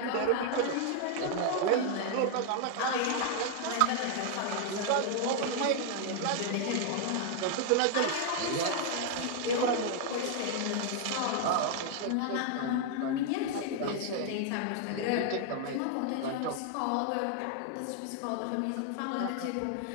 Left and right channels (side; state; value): both; different; correlation 0.00